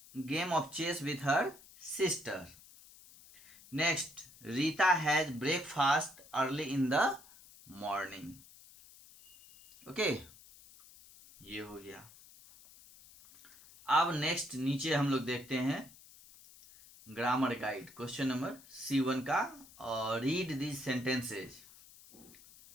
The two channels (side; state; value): left; noise; hiss, 22 dB below the sound